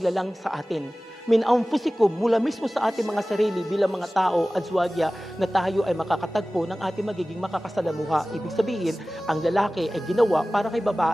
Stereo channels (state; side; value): normal; both; correlation 0.97